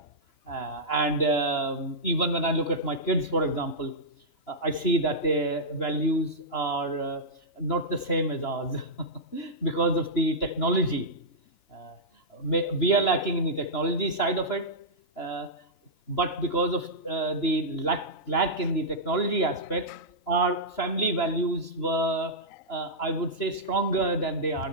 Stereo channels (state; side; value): late; right; 2.9 ms